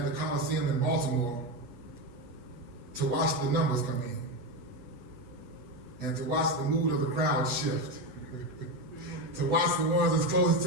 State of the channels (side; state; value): left; late; 8.4 ms